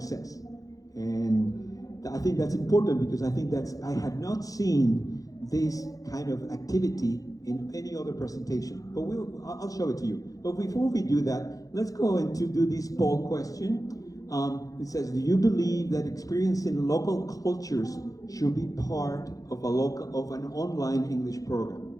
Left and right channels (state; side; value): late; right; 0.17 ms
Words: And I think that's important because I had not seen this kind of activity in any other presentation, but I'll show it to you. But before we do that, let's go into do this poll question. It says, do you believe that experiencing local cultures should be part of an online English program?